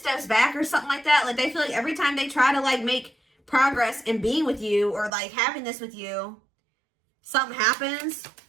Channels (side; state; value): left; drops out; at 5.1 s